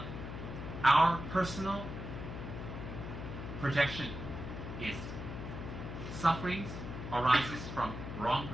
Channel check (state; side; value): noise; left; hum, 7 dB below the sound